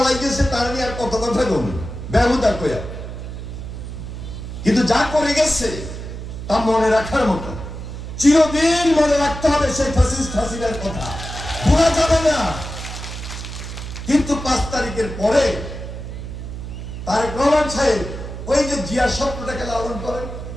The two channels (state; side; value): noise; right; hum, 9 dB below the sound